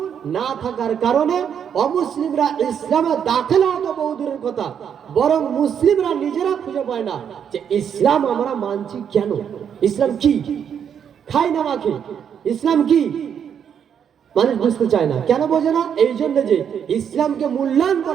না থাকার কারণে অমুসলিমরা ইসলামে দাখিল হওয়া তো বহু দূরের কথা, বরং মুসলিমরা নিজেরা খুঁজে পায় না যে ইসলাম আমরা মানছি কেন, ইসলাম কি, খাই না মাখি, ইসলাম কি মানুষ বুঝতে চায় না। কেন বোঝে না? এই জন্য যে ইসলামকে মূল্যায়ন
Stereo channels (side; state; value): left; quieter; 8.1 dB